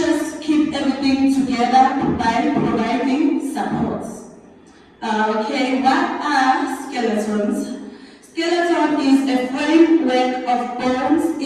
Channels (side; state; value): both; identical; correlation 1.00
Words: keep everything together by providing supports. Okay, what are skeletons? Skeleton is a framework of bones